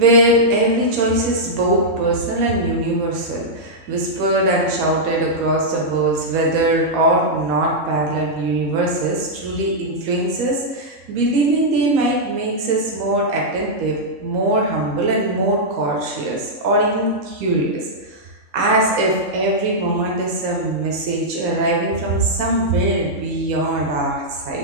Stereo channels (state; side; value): late; left; 4.1 ms